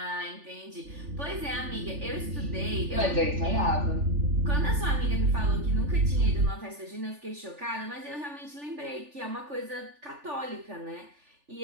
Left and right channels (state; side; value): late; left; 3.4 ms